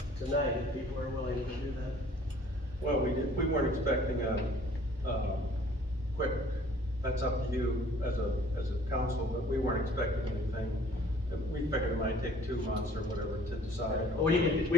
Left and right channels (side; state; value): both; normal; correlation 0.55